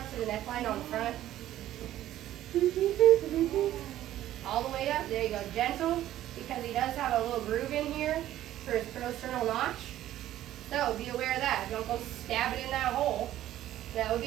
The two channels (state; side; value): quieter; left; 13.2 dB